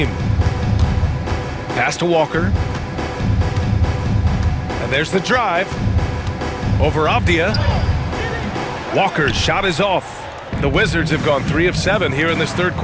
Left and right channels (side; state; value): both; identical; correlation 1.00